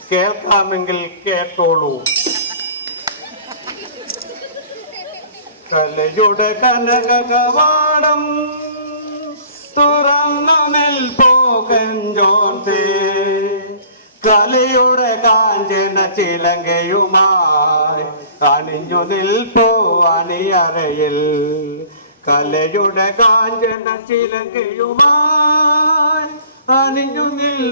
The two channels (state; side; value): inverted; both; correlation -0.48